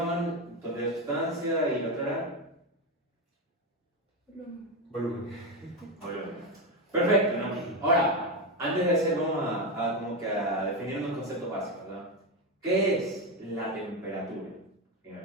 total de sustancia y la otra era Volumen. volumen. Perfecto, ¿no? Ahora, antes de hacer, vamos a definir unos conceptos básicos, ¿no? ¿Qué es la temperatura?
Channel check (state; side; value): normal; both; correlation 0.12